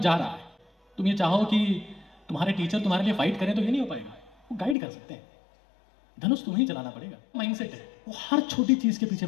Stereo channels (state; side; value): drops out; right; at 4.8 s